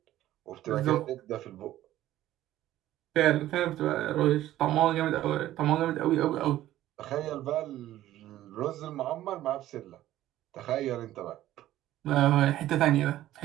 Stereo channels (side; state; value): left; quieter; 14.0 dB